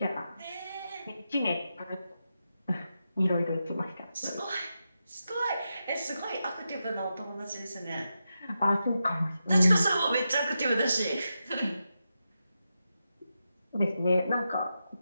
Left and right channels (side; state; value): both; inverted; correlation -0.88